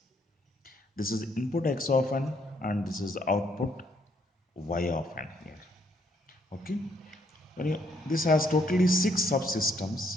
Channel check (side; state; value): both; normal; correlation 0.71